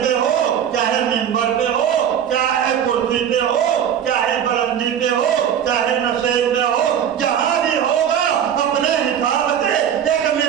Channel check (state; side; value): quieter; left; 9.1 dB